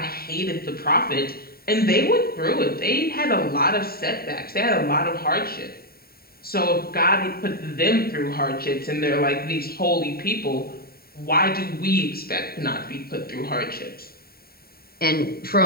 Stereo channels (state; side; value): late; right; 0.44 ms